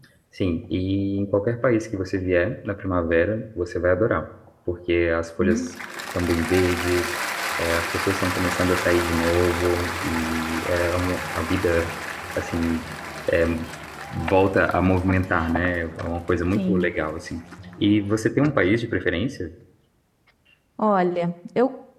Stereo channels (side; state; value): both; identical; correlation 1.00